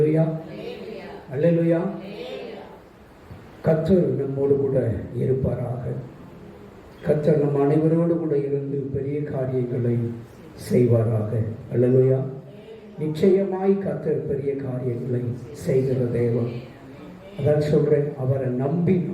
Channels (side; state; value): both; identical; correlation 1.00